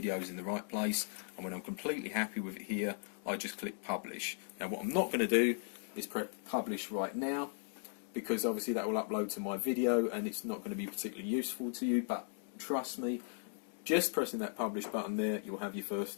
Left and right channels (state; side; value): silent; right; digital silence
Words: in the right place. And when I'm completely happy with it here, I just click publish. Now what I'm not going to do is press publish right now, because obviously that will upload to my video and it's not going to be particularly useful to you, but trust me, just pressing that publish button there, you'll have your first